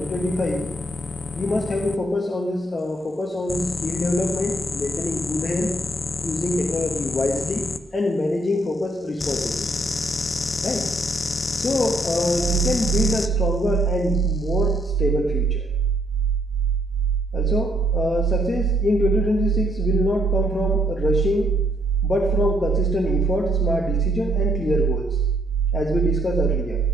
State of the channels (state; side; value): normal; both; correlation 0.70